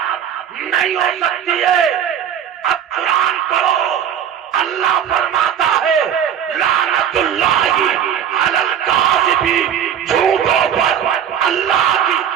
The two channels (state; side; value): quieter; left; 9.0 dB